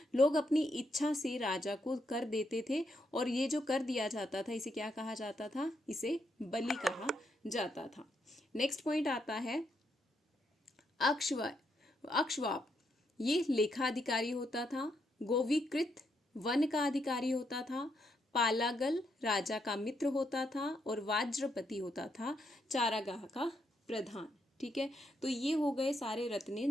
लोग अपनी इच्छा से राजा को कर देते थे, और ये जो कर दिया जाता था इसे क्या कहा जाता था? इसे बलि कहा जाता था। नेक्स्ट पॉइंट आता है अक्षवाप। ये लेखाधिकारी होता था। गोविकृत वन का अधिकारी होता था। पालागल राजा का मित्र होता था, और वाज्रपति होता था चारागाह का प्रधान। ठीक है, तो ये हो गए सारे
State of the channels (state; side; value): normal; both; correlation 0.78